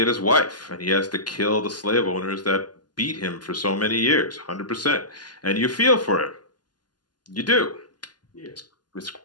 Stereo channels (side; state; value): right; late; 0.70 ms